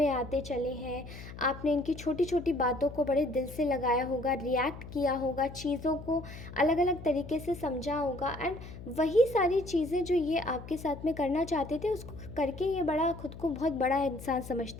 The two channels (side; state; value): left; noise; hum, 13 dB below the sound